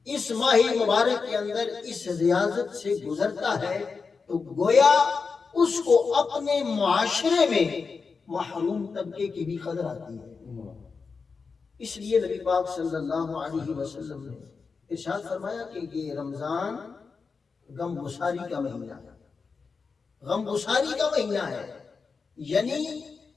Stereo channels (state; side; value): quieter; right; 4.9 dB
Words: اس ماہ مبارک کے اندر اس ریاضت سے گزرتا ہے، تو گویا اس کو اپنے معاشرے میں محروم طبقے کی بھی قدر آتی ہے. اس لیے نبی پاک صلی اللہ علیہ وسلم نے ارشاد فرمایا کہ یہ رمضان غم گساری کا مہینہ ہے، غم گساری کا مہینہ ہے. یعنی